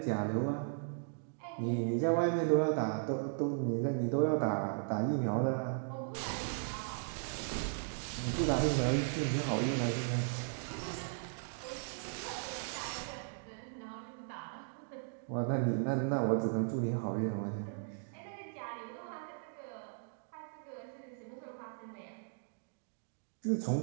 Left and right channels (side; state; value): left; silent; digital silence